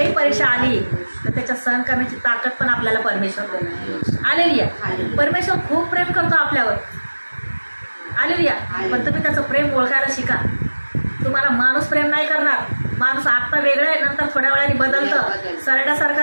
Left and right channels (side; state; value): both; inverted; correlation -1.00